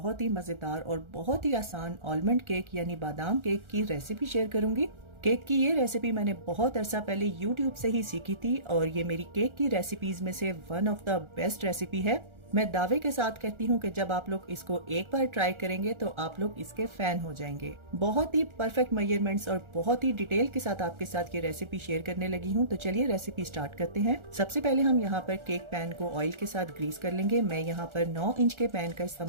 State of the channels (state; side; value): late; left; 1.4 ms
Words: ही मज़ेदार और बहुत ही आसान आलमंड केक यानी बादाम केक की रेसिपी शेयर करूंगी। केक की ये रेसिपी मैंने बहुत अरसा पहले YouTube से ही सीखी थी और ये मेरी केक की रेसिपीज में से one of the best recipe है। मैं दावे के साथ कहती हूँ कि जब आप लोग इसको एक बार ट्राई करेंगे तो आप लोग इसके फैन हो जाएंगे। बहुत ही परफेक्ट मेजरमेंट्स और बहुत ही डिटेल के साथ आपके साथ ये रेसिपी शेयर करने लगी हूँ। तो चलिए रेसिपी स्टार्ट करते हैं। सबसे पहले हम यहाँ पर केक पैन को ऑयल के साथ ग्रीस कर लेंगे। मैं यहाँ पर 9 इंच के पैन का